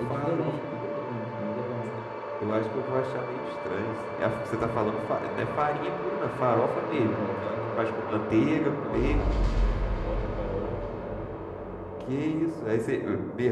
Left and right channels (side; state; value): both; identical; correlation 1.00